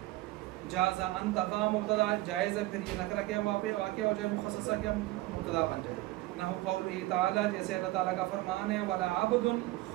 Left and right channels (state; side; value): quieter; left; 18.3 dB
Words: جازا ان تقع مبتدا، جائز ہے پھر یہ نکرہ کیا واقع ہو جائے، مخصصہ کیا مبتدا بن جائے. نحو قولہ تعالی، جیسے اللہ تعالیٰ کا فرمان ہے وَلَا عَبْدٌ